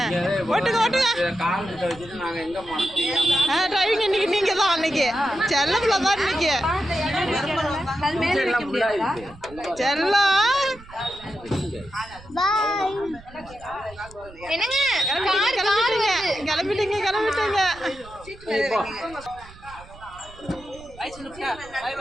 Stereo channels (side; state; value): right; noise; rumble, 20 dB below the sound